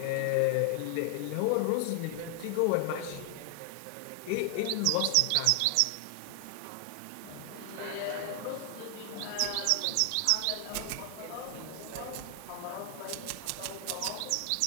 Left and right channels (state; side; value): different; both; correlation 0.00